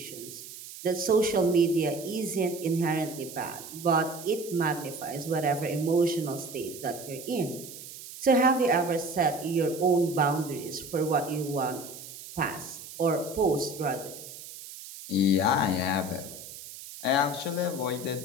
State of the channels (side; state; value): right; noise; hiss, 13 dB below the sound